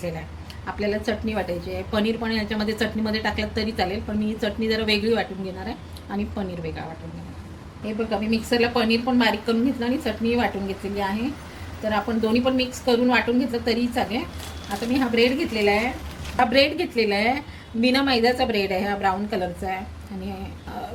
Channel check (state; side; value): identical; both; correlation 1.00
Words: आहे. आपल्याला चटणी वाटायची आहे. पनीर पण याच्यामध्ये चटणीमध्ये टाकलं तरी चालेल, पण मी चटणी जरा वेगळी वाटून घेणार आहे आणि पनीर वेगळा वाटून घेणार आहे. हे बघा, मी मिक्सरला पनीर पण बारीक करून घेतलं आणि चटणी वाटून घेतलेली आहे. तर आपण दोन्ही पण मिक्स करून वाटून घेतलं तरी चालेल. आता मी हा ब्रेड घेतलेला आहे, बिना मैद्याचा ब्रेड आहे, हा ब्राऊन कलरचा आहे आणि